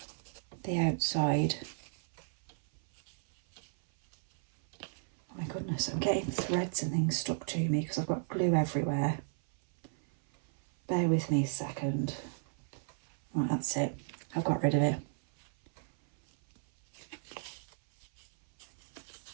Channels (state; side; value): silent; left; 55 dB below the other